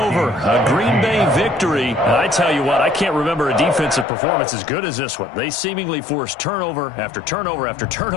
A Green Bay victory. And I tell you what, I can't remember a defensive performance as good as this one. They seemingly forced turnover after turnover after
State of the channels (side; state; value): right; drops out; at 4.0 s